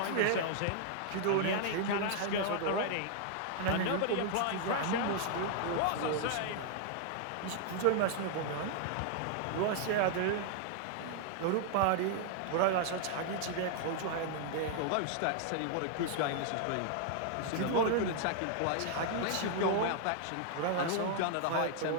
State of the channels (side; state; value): both; different; correlation 0.00